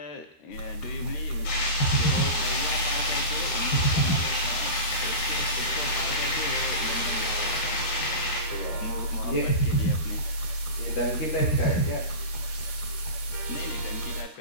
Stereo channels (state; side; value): late; right; 13 ms